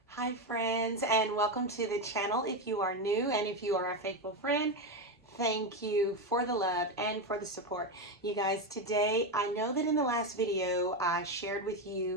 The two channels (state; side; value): normal; both; correlation 0.12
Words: Hi friends, and welcome to the channel. If you are new and if you are a faithful friend, thank you for the love and for the support. You guys, today I know that in the last video I shared with